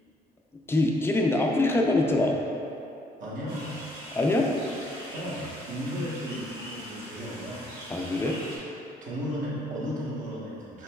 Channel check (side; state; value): both; normal; correlation 0.68